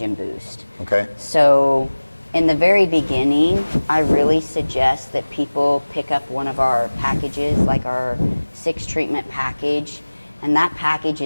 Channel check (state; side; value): inverted; both; correlation -1.00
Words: boost. Okay. So in the very beginning, I really suggest that people pick up one of our packages, like our 6 treatment package, and that package